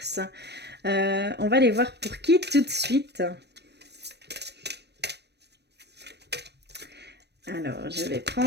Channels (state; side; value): late; left; 0.49 ms